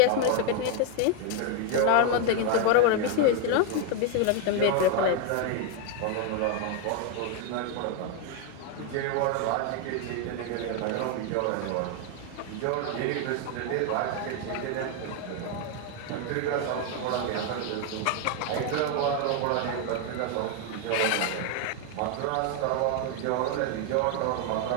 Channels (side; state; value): both; different; correlation 0.01